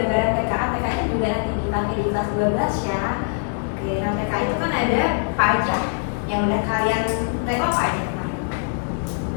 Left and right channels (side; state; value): right; silent; 64 dB below the other